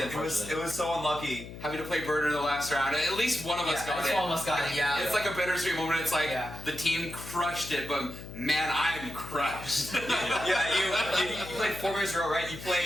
it. It was so unlucky. Having to play Burner in the last round. At least one of us got it. One of us got it. Yeah. It's like a bittersweet moment. It's like the team crushed it, but man, I'm crushed. Yeah, you played 4 games in a row, right? You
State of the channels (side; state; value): left; noise; hum, 12 dB below the sound